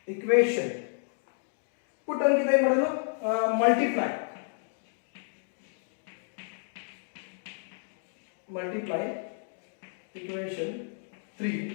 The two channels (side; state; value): right; silent; digital silence